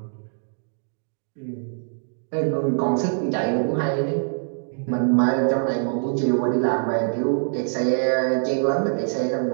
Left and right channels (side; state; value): left; silent; digital silence